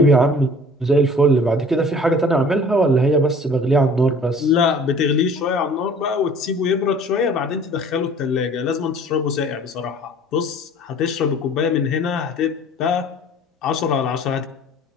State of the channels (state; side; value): normal; both; correlation 0.49